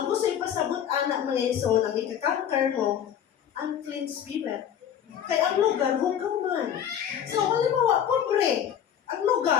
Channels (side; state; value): right; quieter; 9.3 dB